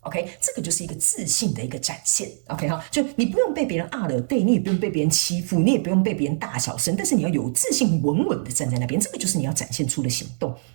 OK， 这个就是一个自信的一个展现。OK 哈，就你不用被别人了对，你也不用被别人欺负，你也不用被别人大小声，但是你要有自信，稳稳的站在那边，这个就是你要展现出的行动。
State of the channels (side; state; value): left; silent; 63 dB below the other